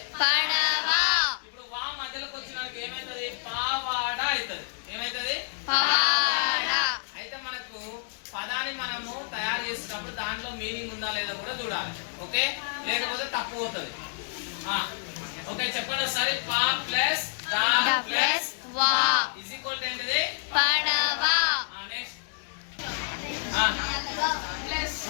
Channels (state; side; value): silent; right; digital silence